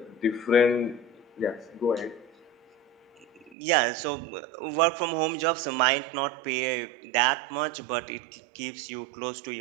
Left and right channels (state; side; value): drops out; left; at 3.6 s